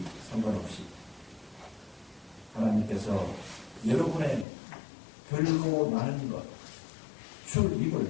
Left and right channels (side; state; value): right; drops out; at 4.5 s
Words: 상관없이 하나님께서 여러분의 별로 나는 것, 출입을